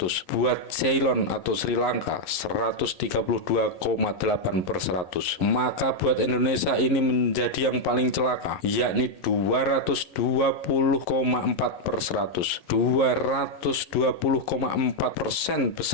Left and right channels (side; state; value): right; late; 11 ms